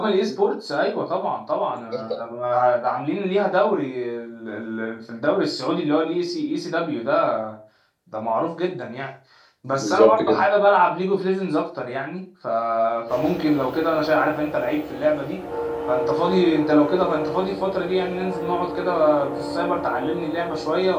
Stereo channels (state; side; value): identical; both; correlation 1.00